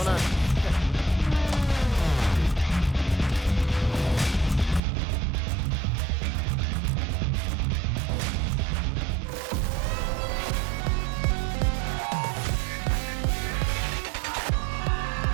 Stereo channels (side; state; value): left; drops out; at 4.8 s